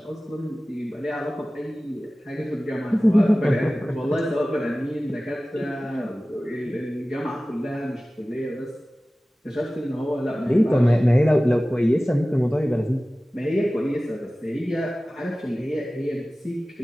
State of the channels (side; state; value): both; normal; correlation 0.97